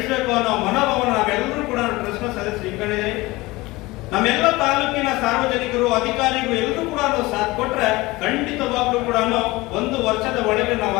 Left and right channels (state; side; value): quieter; right; 21.0 dB